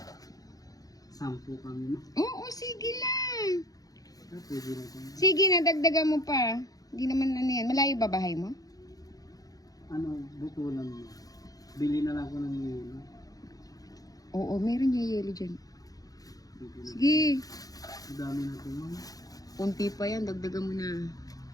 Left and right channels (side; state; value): right; late; 0.18 ms